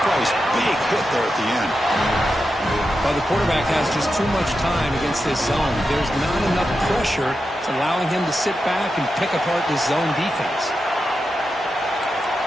price. Big hit there at the end. Well, the quarterback has just too much time against this zone. There's not enough pressure. It's allowing him to sit back and pick apart this zone defense.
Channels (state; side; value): normal; both; correlation 0.89